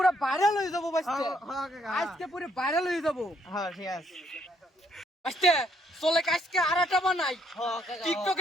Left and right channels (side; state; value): both; normal; correlation 0.70